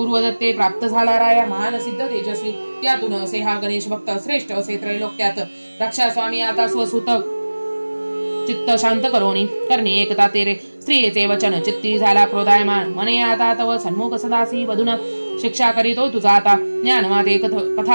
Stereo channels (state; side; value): inverted; both; correlation -1.00